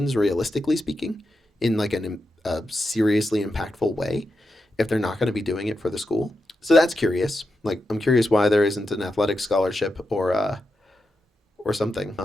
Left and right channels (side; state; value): both; normal; correlation 0.87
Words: realistically speaking, in like a seriously impactful way if they're not going to be doing it for the school. So that's curious. Like, I'm curious why there isn't an athletic scholarship or something.